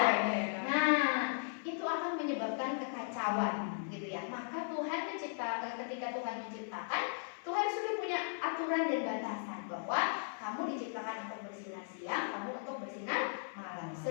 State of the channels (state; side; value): silent; right; 53 dB below the other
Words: Nah, itu akan menyebabkan kekacauan, gitu ya. Maka ketika Tuhan menciptakan, Tuhan sudah punya aturan dan batasan bahwa kamu diciptakan untuk bersinar siang, kamu untuk bersinar malam,